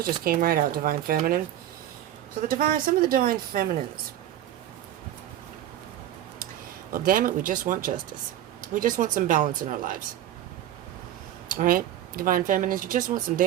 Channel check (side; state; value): left; quieter; 12.2 dB